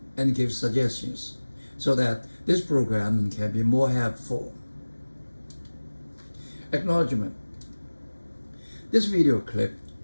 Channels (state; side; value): inverted; both; correlation -1.00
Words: and give suggestions so that this program can be more helpful. Acknowledgement. This video clip